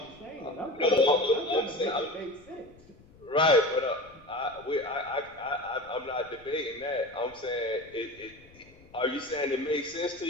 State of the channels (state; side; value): noise; left; rumble, 25 dB below the sound